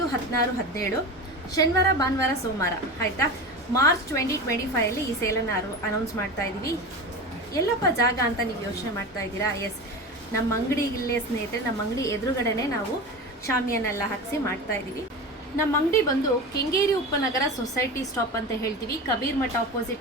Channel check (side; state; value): both; normal; correlation 0.27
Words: 16, 17 ಶನಿವಾರ, ಭಾನುವಾರ, ಸೋಮವಾರ, ಆಯಿತಾ. ಮಾರ್ಚ್ 2025 ಈ ಸೇಲನ್ನು ಅನೌನ್ಸ್ ಮಾಡ್ತಾ ಇದ್ದೀವಿ. ಎಲ್ಲಪ್ಪ ಜಾಗ ಅಂತ ನೀವು ಯೋಚನೆ ಮಾಡ್ತಾ ಇದ್ದೀರಾ? ಎಸ್, ನಮ್ಮ ಅಂಗಡಿಗಿಲ್ಲೇ ಸ್ನೇಹಿತರೆ, ನಮ್ಮ ಅಂಗಡಿ ಎದುರುಗಡೆನೆ ನಾವು ಶಾಮಿಯನ್ನೆಲ್ಲ ಹಾಕಿಸಿ ಮಾಡ್ತಾ ಇದ್ದೀವಿ. ನಮ್ಮ ಅಂಗಡಿ ಬಂದು ಕೆಂಗೇರಿ ಉಪನಗರ ಸೊಸೈಟಿ ಸ್ಟಾಪ್ ಅಂತ ಹೇಳ್ತೀವಿ. ಕಬೀರ್ ಮಠ